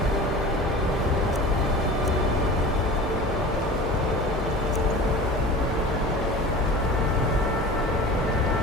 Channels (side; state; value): both; normal; correlation 0.37